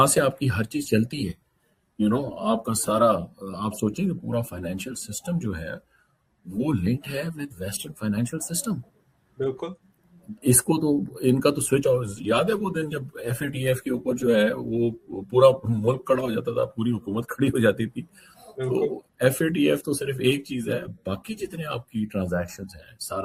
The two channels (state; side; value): identical; both; correlation 1.00